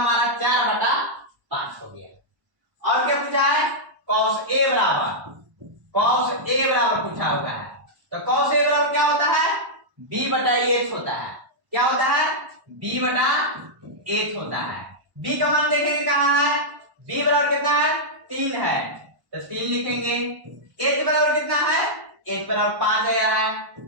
4/5 हो गया। और क्या पूछा है, cos a बराबर पूछा हुआ है, तो cos a बराबर क्या होता है b/h होता है। क्या होता है b/h होता है। b का मान देखेंगे कहां है, b बराबर कितना है 3 है, तो 3 लिखेंगे। h बराबर कितना है, h बराबर 5 आया है,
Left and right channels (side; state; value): left; late; 1.1 ms